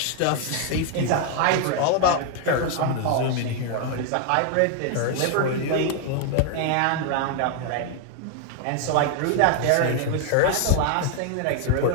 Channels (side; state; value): both; different; correlation 0.00